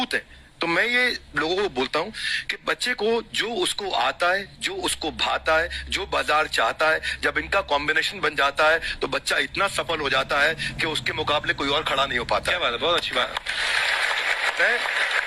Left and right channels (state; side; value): identical; both; correlation 1.00